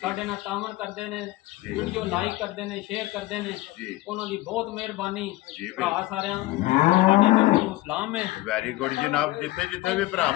ਸਾਡੇ ਨਾਲ ਤਾਵਨ ਕਰਦੇ ਨੇ, ਵੀਡੀਓ ਲਾਈਕ ਕਰਦੇ ਨੇ, ਸ਼ੇਅਰ ਕਰਦੇ ਨੇ, ਉਹਨਾਂ ਦੀ ਬਹੁਤ ਮਿਹਰਬਾਨੀ। ਭਰਾ ਸਾਰਿਆਂ ਸਾਡੀ ਤਰਫੋਂ ਸਲਾਮ ਹੈ। ਵੈਰੀ ਗੁੱਡ ਜਨਾਬ। ਜਿੱਥੇ ਜਿੱਥੇ ਵੀ ਭਰਾ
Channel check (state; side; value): quieter; right; 18.4 dB